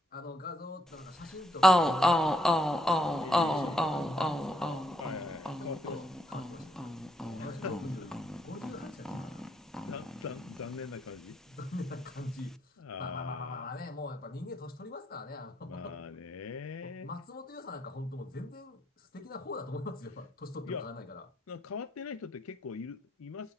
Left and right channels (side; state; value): both; normal; correlation 0.75